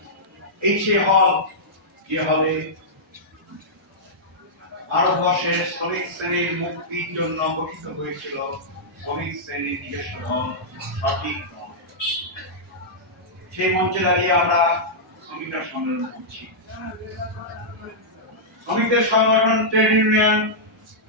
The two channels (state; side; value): normal; both; correlation -0.11